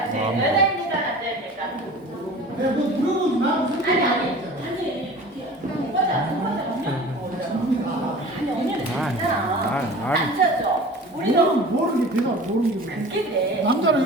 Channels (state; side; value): normal; both; correlation 0.40